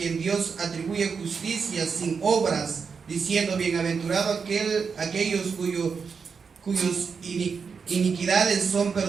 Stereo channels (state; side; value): quieter; left; 5.7 dB